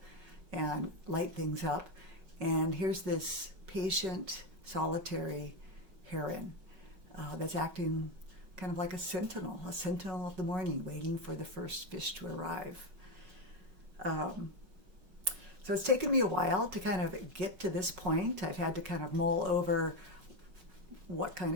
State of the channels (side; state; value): left; late; 5.4 ms